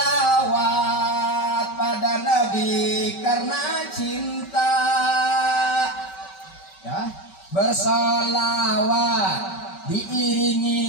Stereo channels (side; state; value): right; late; 5.2 ms